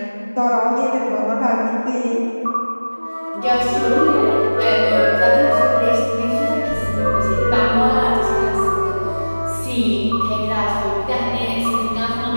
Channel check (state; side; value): inverted; both; correlation -1.00